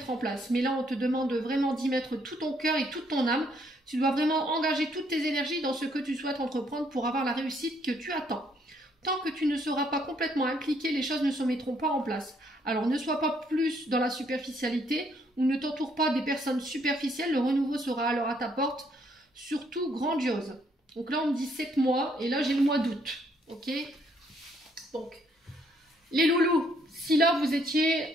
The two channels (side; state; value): both; normal; correlation 0.69